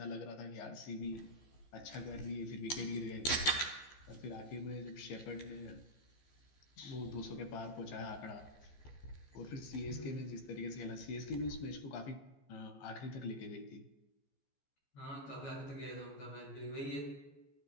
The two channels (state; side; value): late; right; 14 ms